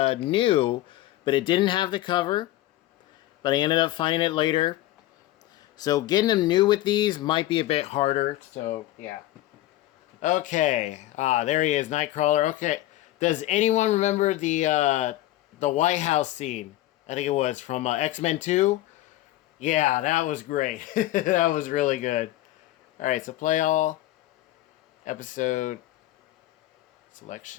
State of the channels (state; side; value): quieter; right; 15.4 dB